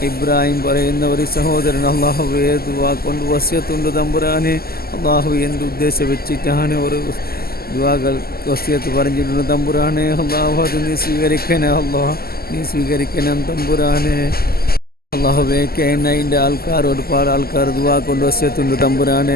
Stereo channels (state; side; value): late; right; 0.45 ms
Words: ഇബ്രാഹിം പറയുന്ന ഒരു സഹോദരൻ അള്ളാഹുവേ ദുആ കൊണ്ട് വസിയത്തുണ്ട് തമ്പുരാനെ. അള്ളാഹുവേ, എന്ത് ഉദ്ദേശം വെച്ചിട്ടാണ് ഒരു ദുആകൾ വസിയത്ത് പറഞ്ഞിട്ടുണ്ട് തമ്പുരാനെ. അള്ളാഹു, അത് നീ സ്വീകരിക്കണേ അള്ളാഹ്, നീ സ്വീകരിക്കണം തമ്പുരാനെ. അള്ളാഹുവേ, കേനൈൻ്റെ ആൾക്കാർ ഒരുപാട് ആൾക്കാർ ദുആ കൊണ്ട് വസിയത്തുണ്ട്